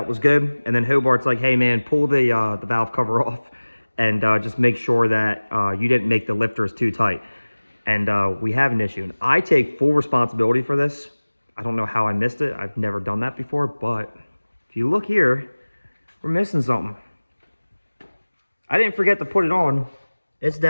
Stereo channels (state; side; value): inverted; both; correlation -1.00